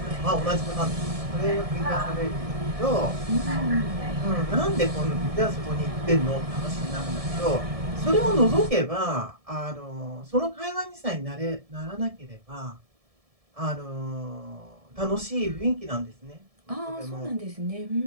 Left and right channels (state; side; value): late; left; 1.7 ms